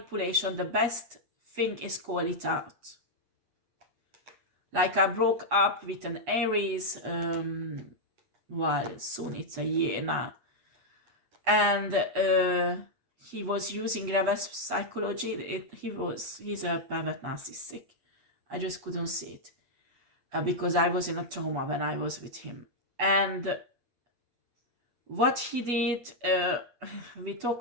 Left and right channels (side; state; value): left; late; 8.1 ms